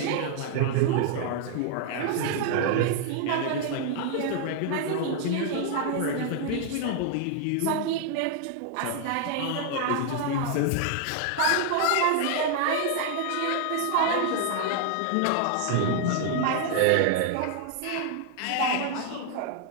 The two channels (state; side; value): different; both; correlation 0.00